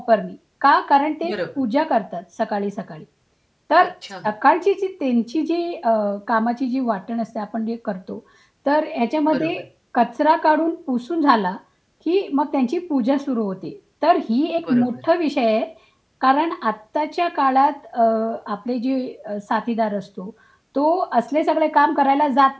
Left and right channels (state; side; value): identical; both; correlation 1.00